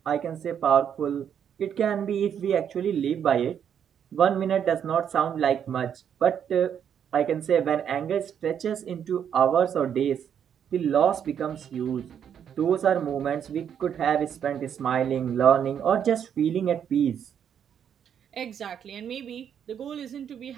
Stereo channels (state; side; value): quieter; left; 8.6 dB